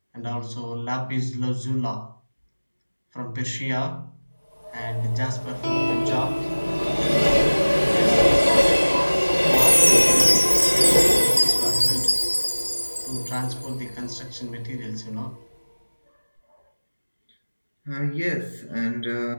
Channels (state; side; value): inverted; both; correlation -1.00